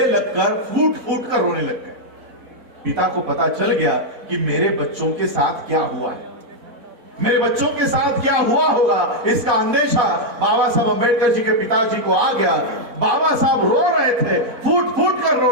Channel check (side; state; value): left; late; 4.4 ms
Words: लगकर फूट फूट कर रोने लग गए। पिता को पता चल गया कि मेरे बच्चों के साथ क्या हुआ है, मेरे बच्चों के साथ क्या हुआ होगा, इसका अंदेशा बाबा साहब अंबेडकर जी के पिताजी को आ गया। बाबा साहब रो रहे थे, फूट फूट कर रो